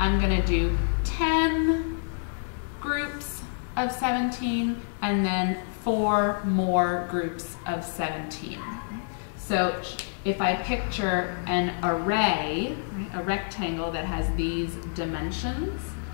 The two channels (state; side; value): silent; right; digital silence